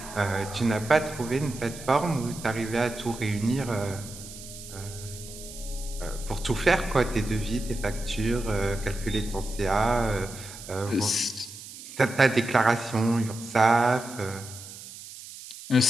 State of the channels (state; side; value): noise; right; hiss, 14 dB below the sound